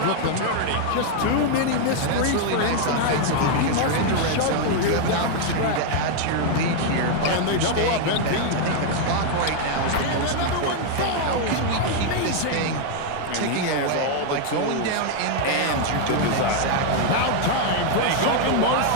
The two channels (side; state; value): both; different; correlation 0.00